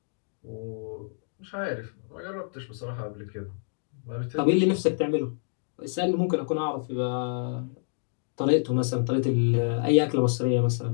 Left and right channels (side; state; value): right; silent; digital silence